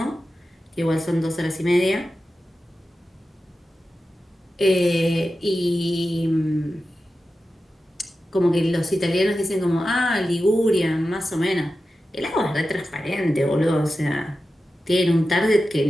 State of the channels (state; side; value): normal; both; correlation 0.92